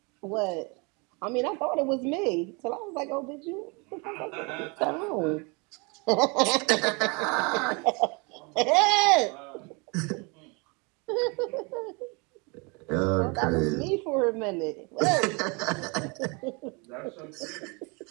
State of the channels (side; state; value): left; quieter; 30.3 dB